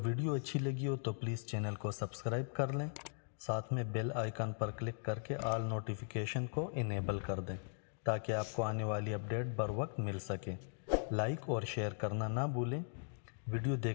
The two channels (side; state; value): right; silent; digital silence